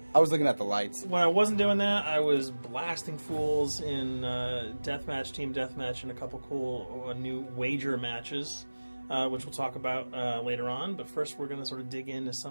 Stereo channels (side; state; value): both; inverted; correlation -1.00